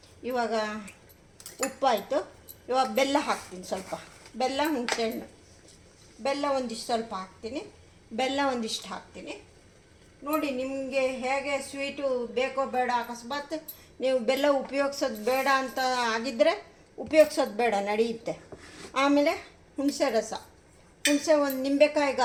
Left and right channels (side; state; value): both; identical; correlation 1.00